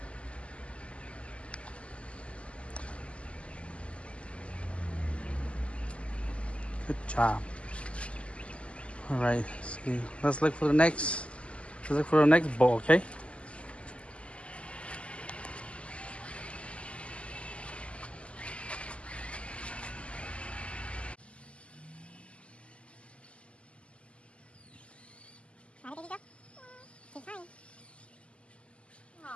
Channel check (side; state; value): right; late; 0.057 ms